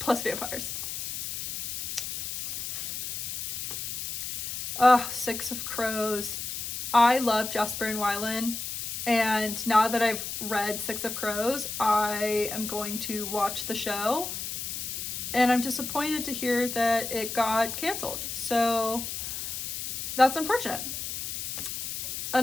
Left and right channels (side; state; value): left; noise; hiss, 5 dB below the sound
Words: vampires. Six of Crows. I love Jesper and Wylan, and now that I've read Six of Crows, I am going to watch the show, and I'm disappointed to hear that it got canceled. So that's unfortunate.